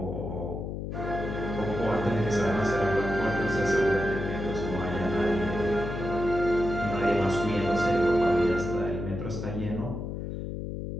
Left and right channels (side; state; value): left; noise; hum, 5 dB below the sound